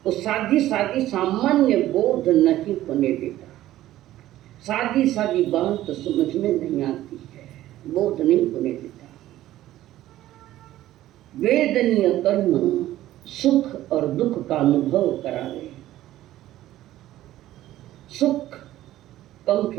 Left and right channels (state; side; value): quieter; left; 14.3 dB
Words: वो सादी सामान्य बोध नहीं होने देता। सादी बात तो समझ में नहीं आती है, बोध नहीं होने देता। वेदनीय कर्म सुख और दुख का अनुभव करावे। सुख कम